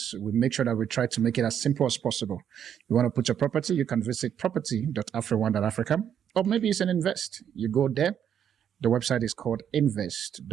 We make sure that we try to make it as simple as possible. You want to put your property, you can visit property.afrione.africa, or maybe it's an invest. You go there. The website is called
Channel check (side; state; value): left; quieter; 9.0 dB